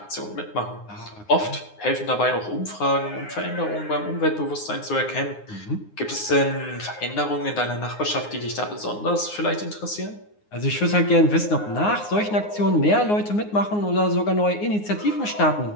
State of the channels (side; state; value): right; late; 9.6 ms